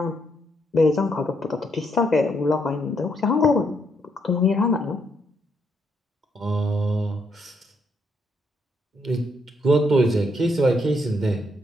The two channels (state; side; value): normal; both; correlation 0.75